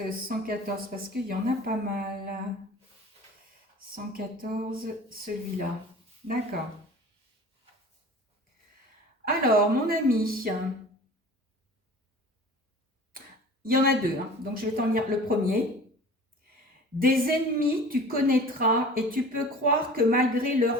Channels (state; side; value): normal; both; correlation 0.41